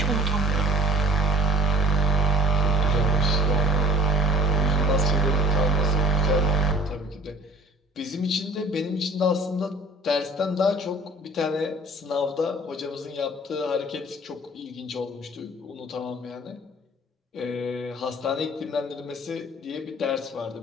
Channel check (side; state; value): both; normal; correlation 0.48